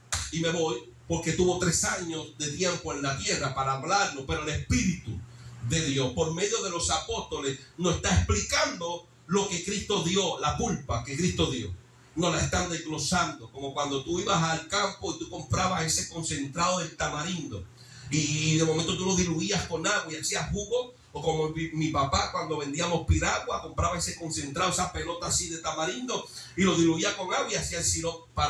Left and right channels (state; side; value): identical; both; correlation 1.00